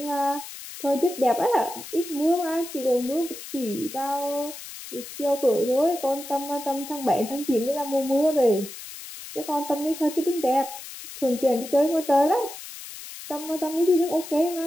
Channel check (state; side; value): noise; left; hiss, 13 dB below the sound